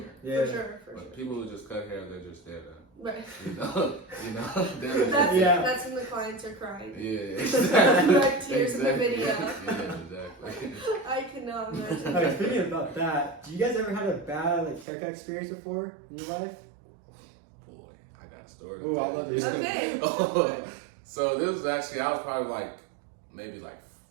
Yeah. For sure, for But sure. people who just cut hair, they're just there to, Right. they're Yeah. That's when the clients are crying. yeah, exactly. Like tears in the Exactly. video. Yeah, exactly. I cannot imagine. Okay, speaking about that, do you guys ever had a bad like haircut experience before in your life? Boy, I got a story. Ooh, I'd love to hear it. Oh, so this was actually, I was probably like, maybe like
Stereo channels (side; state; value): left; drops out; at 14.9 s